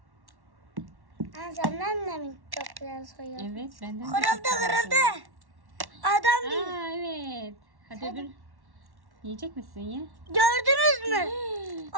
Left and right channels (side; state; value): left; late; 1.1 ms